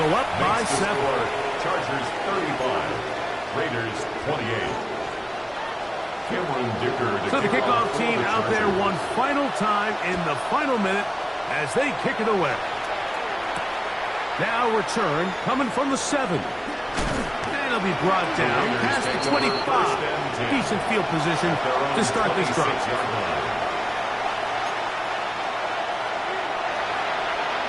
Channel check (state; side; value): identical; both; correlation 1.00